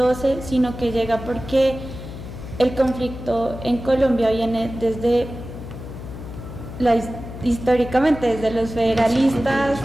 sino que llega porque el conflicto en Colombia viene históricamente desde los federalistas,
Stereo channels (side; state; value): left; noise; hum, 11 dB below the sound